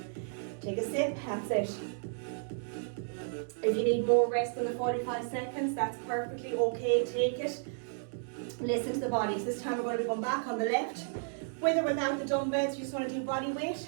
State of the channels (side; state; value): left; silent; digital silence